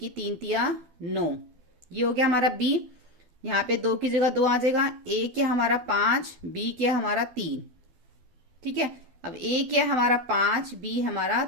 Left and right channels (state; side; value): late; left; 12 ms